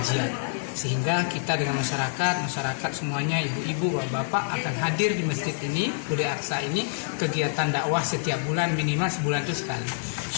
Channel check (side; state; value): right; silent; 58 dB below the other